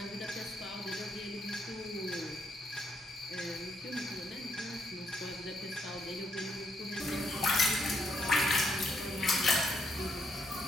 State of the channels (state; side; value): normal; both; correlation 0.75